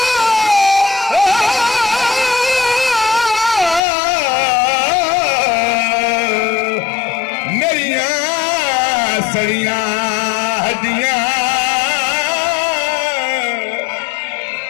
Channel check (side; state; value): right; drops out; at 3.8 s